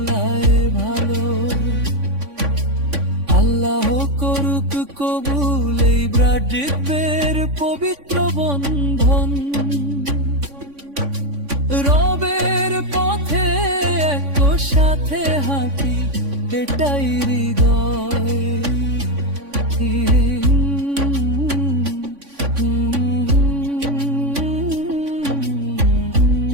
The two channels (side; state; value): left; late; 3.5 ms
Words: ভালো। আল্লাহ করুক কবুল এই ব্রাড্রিপের পবিত্র বন্ধন। রবের পথে এক সাথে হাঁটি এটাই হৃদয়।